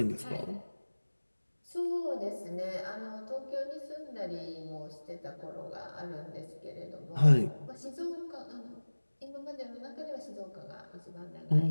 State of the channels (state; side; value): inverted; both; correlation -1.00